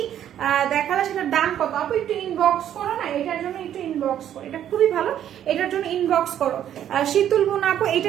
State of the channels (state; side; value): quieter; left; 10.6 dB